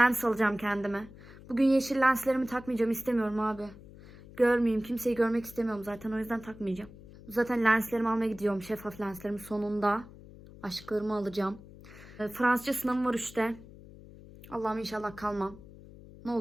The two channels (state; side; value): noise; left; hum, 19 dB below the sound